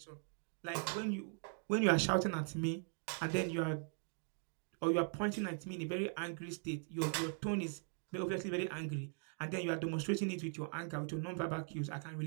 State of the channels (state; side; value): silent; left; 51 dB below the other